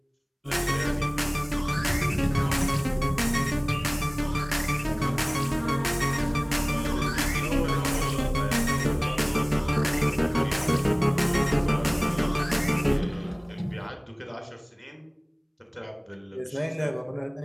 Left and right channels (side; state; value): both; identical; correlation 1.00